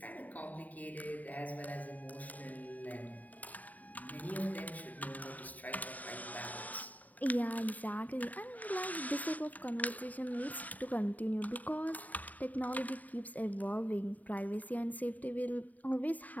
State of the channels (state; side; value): late; right; 0.075 ms